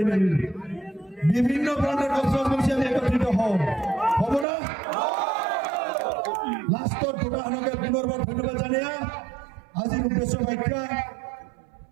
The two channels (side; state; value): left; drops out; at 4.5 s